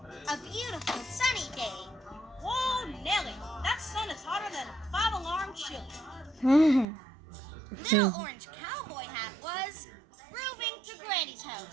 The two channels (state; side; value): drops out; left; at 6.9 s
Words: a beautiful sunny day. Whoa, Nelly, that sun is hotter than a 5-alarm chili. Little Orange Cowboy Hat was grooving to Granny's